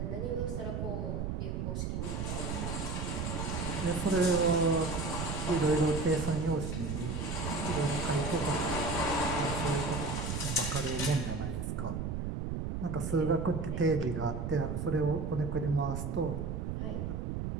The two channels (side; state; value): right; noise; rumble, 2 dB below the sound